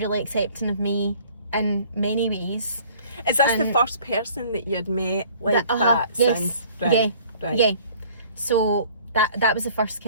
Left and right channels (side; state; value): both; inverted; correlation -0.53